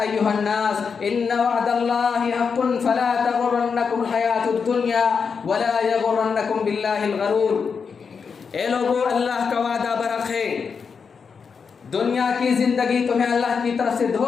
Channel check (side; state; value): right; quieter; 5.8 dB